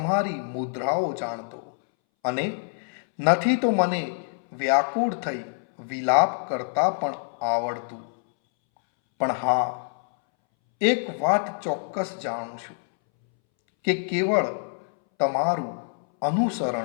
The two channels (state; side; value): silent; right; 61 dB below the other